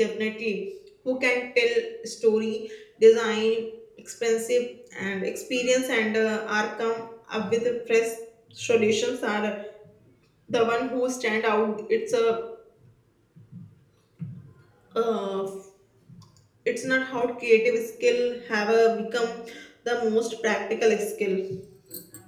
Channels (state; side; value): identical; both; correlation 1.00